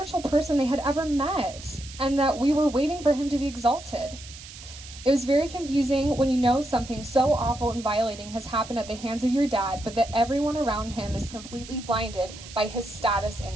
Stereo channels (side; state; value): right; noise; hiss, 16 dB below the sound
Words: person they had ever met, and that we were waiting for him to be exalted. It was very confusing when you know something so awful and violating has happened at the hands of your dad, but that everyone around him is completely blinded by his status in